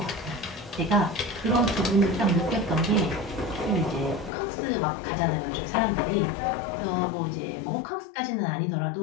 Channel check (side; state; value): right; drops out; at 4.3 s